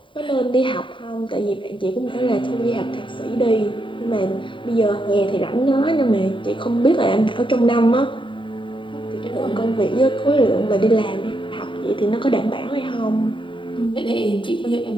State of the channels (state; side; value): late; right; 0.24 ms